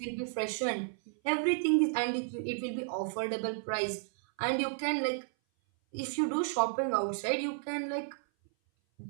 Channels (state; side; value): silent; left; 56 dB below the other